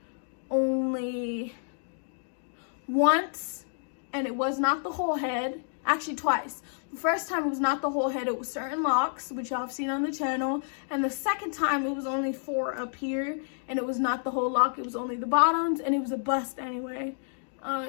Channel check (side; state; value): right; silent; digital silence